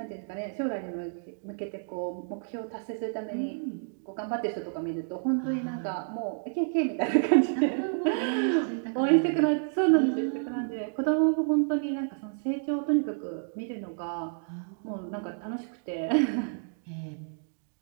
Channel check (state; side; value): silent; left; digital silence